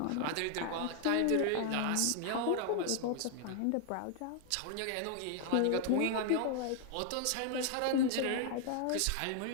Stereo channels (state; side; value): different; both; correlation 0.00